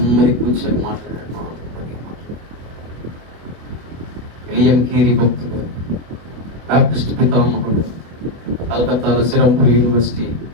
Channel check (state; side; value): late; left; 25 ms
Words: కూర్చొని మాట్లాడాడు. విలియం కేరీ భక్తుడు, బాప్టిస్ట్ పితామహుడు, కలకత్తాలో సిరంపూర్ యూనివర్సిటీ